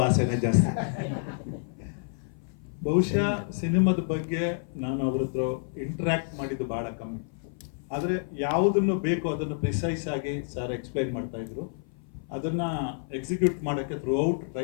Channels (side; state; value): right; silent; 56 dB below the other